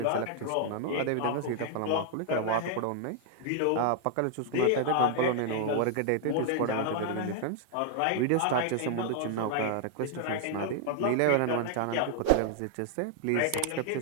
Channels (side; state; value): both; different; correlation -0.01